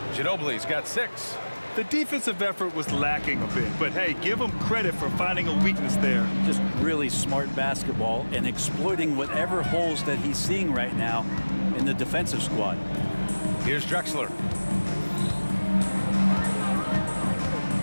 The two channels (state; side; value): inverted; both; correlation -1.00